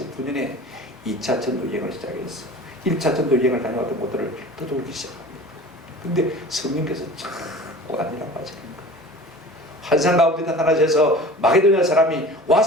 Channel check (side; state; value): both; normal; correlation 0.40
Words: 2차 전도 여행을 시작했어. 1차 전도 여행을 다녀왔던 곳들을 떠돌기 시작합니다. 근데 성령께서 자꾸 아니라고 하시는 거예요. 환상 가운데 나타나셔서 마게도냐 사람이